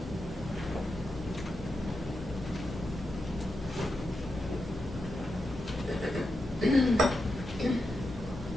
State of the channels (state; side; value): normal; both; correlation 0.87